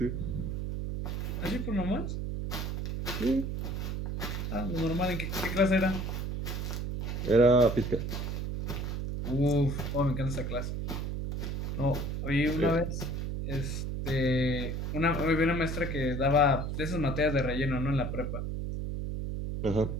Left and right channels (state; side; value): noise; right; hum, 3 dB below the sound